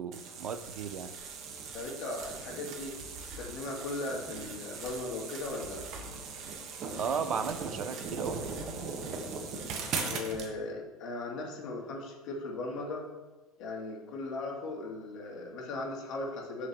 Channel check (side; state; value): both; normal; correlation 0.36